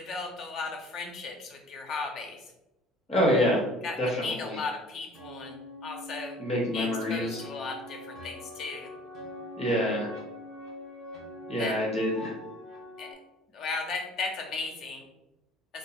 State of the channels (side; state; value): both; normal; correlation 0.50